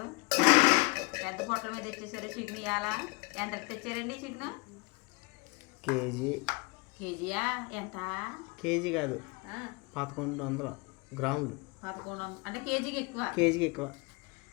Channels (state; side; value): quieter; right; 27.0 dB